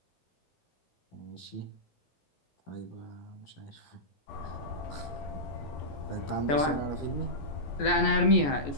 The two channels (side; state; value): right; late; 14 ms